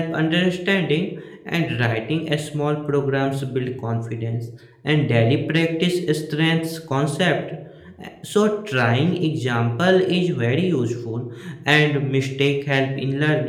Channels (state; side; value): identical; both; correlation 1.00